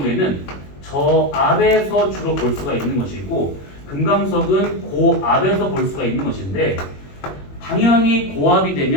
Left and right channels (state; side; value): late; right; 21 ms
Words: 저압에서 주로 볼 수가 있는 것이고 금강석은 고압에서 볼 수가 있는 것인데 당연히 고압이